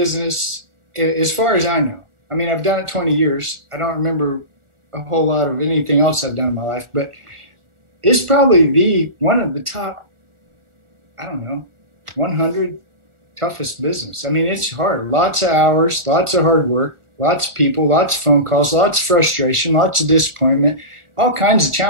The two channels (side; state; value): left; late; 1.4 ms